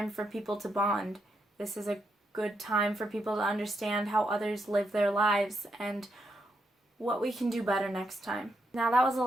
for people to bond. This is a good time for people to understand how others live their lives and what we can do better next time. Now, that was a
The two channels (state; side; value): normal; both; correlation 0.81